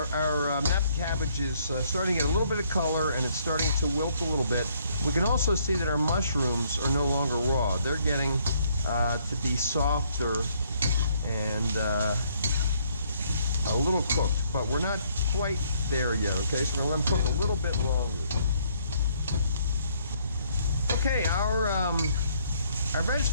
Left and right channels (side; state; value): both; inverted; correlation -0.66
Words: cabbage is starting to get a little bit of color and it's starting to wilt a little bit. We can also see that our mushrooms are no longer raw. They're getting to be softer and a little cooked, but we're not quite there yet, okay? So we're going to let them cook a little bit longer. Okay, our